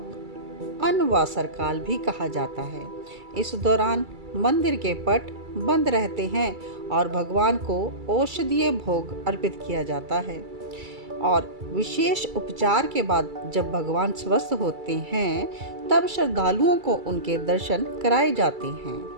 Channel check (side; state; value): left; late; 2.3 ms